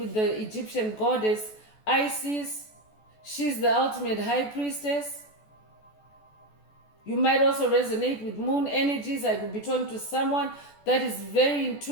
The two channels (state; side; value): late; right; 14 ms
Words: the Egyptian goddess Isis. She's the ultimate High Priestess. You might also resonate with moon energies. I could be talking to someone that is very